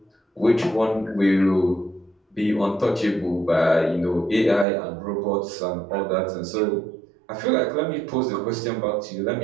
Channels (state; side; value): drops out; left; at 4.7 s